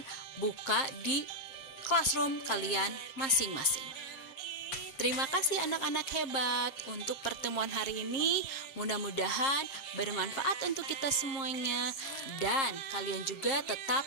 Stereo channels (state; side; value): late; right; 7.5 ms